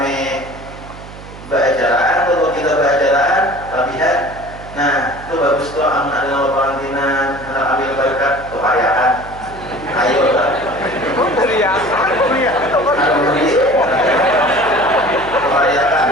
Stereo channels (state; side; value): noise; right; hum, 16 dB below the sound